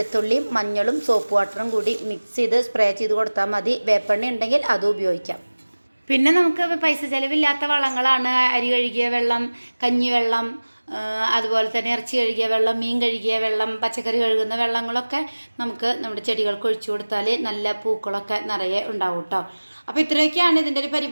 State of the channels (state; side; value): inverted; both; correlation -1.00